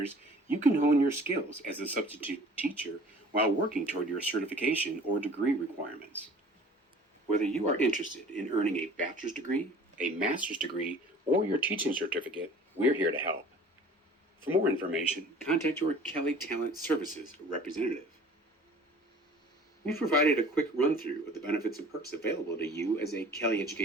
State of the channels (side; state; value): both; normal; correlation 0.48